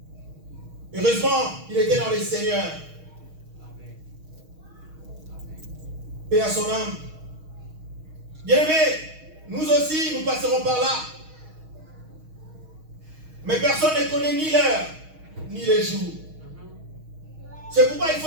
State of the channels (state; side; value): late; left; 6.4 ms